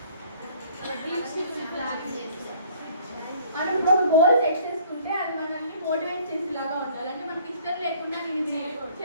మనం ఒక గోల్ సెట్ చేసుకుంటే అది మనల్ని మోటివేట్ చేసేలాగా ఉండాలి. అంటే మనకి ఇష్టం లేకుండా నేను ఇది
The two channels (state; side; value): inverted; both; correlation -0.56